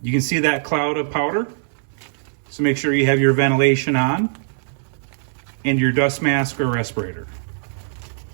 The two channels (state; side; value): silent; left; 65 dB below the other